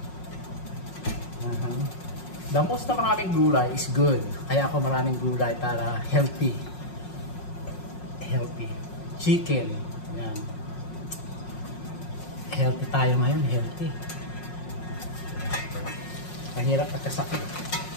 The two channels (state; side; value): late; right; 5.5 ms